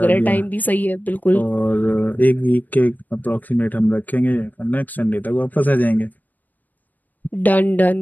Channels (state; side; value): late; right; 0.084 ms